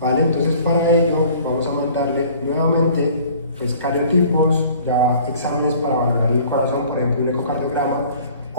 Entonces, para ello vamos a mandarle nuevamente pues cariotipos, ya exámenes para valorar el corazón, por ejemplo, un ecocardiograma,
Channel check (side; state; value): both; inverted; correlation -0.51